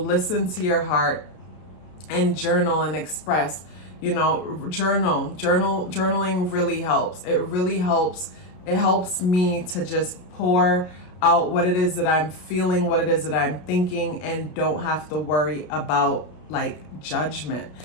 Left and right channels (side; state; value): right; late; 33 ms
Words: to your heart and journal and express. You know, journaling really helps. It really helps. It helps me to just pour out what it is that I'm feeling, what it is that I'm thinking, and don't have to worry about like judgment.